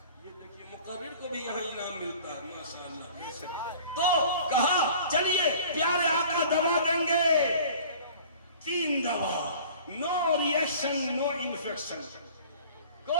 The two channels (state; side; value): inverted; both; correlation -0.46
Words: یہ دیکھیے مقرر کو بھی یہاں انعام ملتا ہے ماشاءاللہ. تو کہا چلیے پیارے آقا دوا دیں گے. 3 دوا. نو ریئیکشن نو انفیکشن.